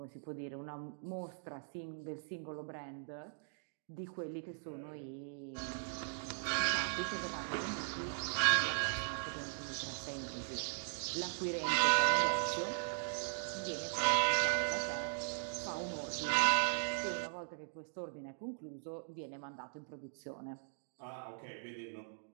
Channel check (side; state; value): left; silent; digital silence